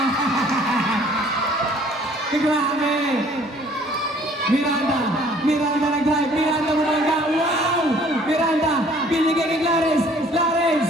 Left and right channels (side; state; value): both; normal; correlation 0.56